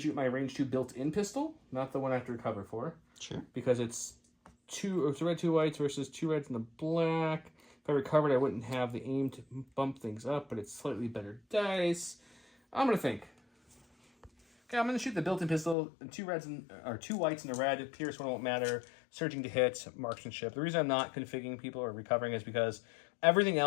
my range 2 built-in pistol, not the one I have to recover for. Sure. Because it's 2 red, 2 whites versus 2 reds and a black. If I recovered, I wouldn't have the aim to bump things up, but it's slightly better dice. I'm going to think. Okay, I'm going to shoot the built-in pistol, 2 reds and or 2 whites and a red. Pierce one won't matter. Surging to hit, marksmanship. The reason I'm not configuring people or recovering is because everything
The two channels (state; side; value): drops out; right; at 15.8 s